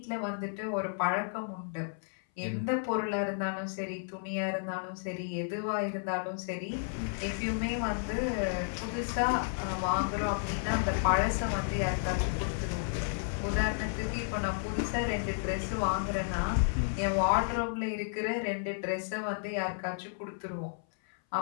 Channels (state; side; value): silent; right; 56 dB below the other